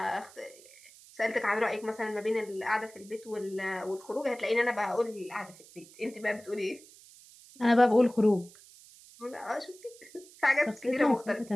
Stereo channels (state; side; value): noise; right; hiss, 22 dB below the sound